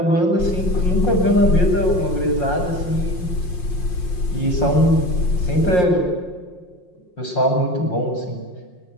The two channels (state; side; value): late; right; 5.6 ms